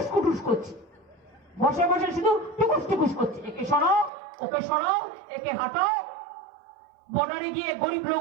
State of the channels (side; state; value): left; drops out; at 4.1 s